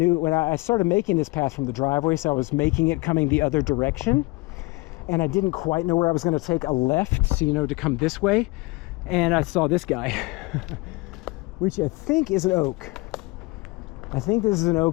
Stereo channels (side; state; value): right; quieter; 24.4 dB